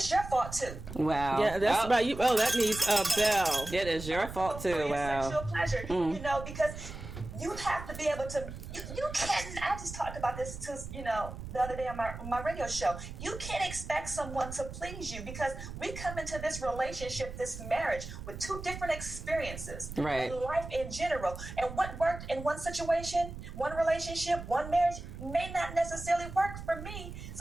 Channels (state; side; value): noise; right; rumble, 10 dB below the sound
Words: your fault too. Wow. Yeah, that's about you. Oh, that needs a bell. It is your fault too. For Wow. Your sexual pleasure, because you have to be able to. You can't. I just talked about this to the other day on my radio show. You can't expect someone to please you, because we come into this relationship, this marriage, with two different experiences, right? In life in general, and what worked in one situation, one relationship, one marriage may not necessarily work for me.